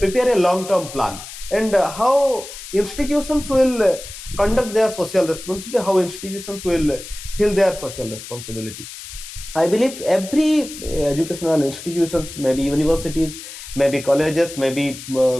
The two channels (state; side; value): noise; left; hiss, 13 dB below the sound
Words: a long term plan, and how institutions will conduct their social responsibility, how institutions will fill their social responsibility. I believe every educational institutions, maybe universities, maybe colleges, maybe